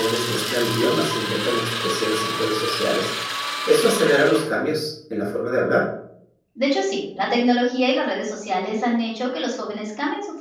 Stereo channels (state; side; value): identical; both; correlation 1.00